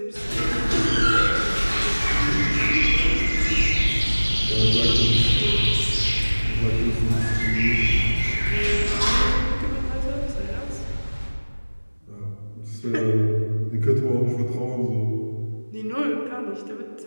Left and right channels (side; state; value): both; inverted; correlation -1.00